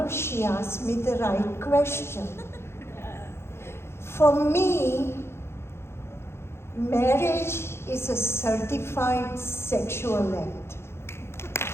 she asked me the right question. For me, marriage is a certified sexual act.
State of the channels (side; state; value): right; late; 0.12 ms